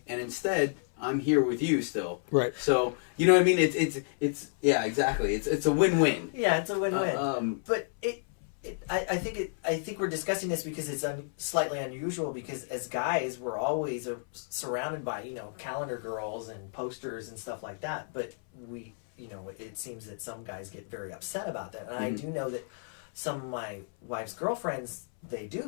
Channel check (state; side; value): silent; right; 57 dB below the other